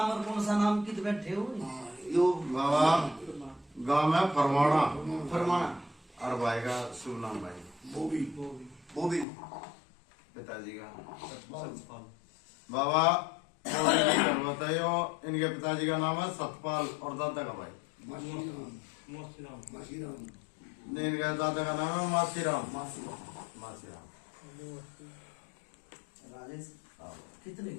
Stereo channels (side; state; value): right; drops out; at 9.2 s